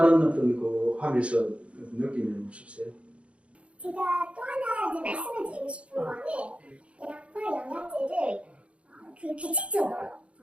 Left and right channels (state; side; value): late; left; 0.061 ms